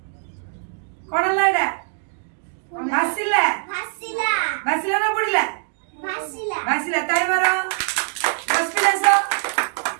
कोन लाडा भासिला भासिला भासिला ना बुडीला भासिला भासिला ताई मारो बसपिलास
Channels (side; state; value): left; silent; digital silence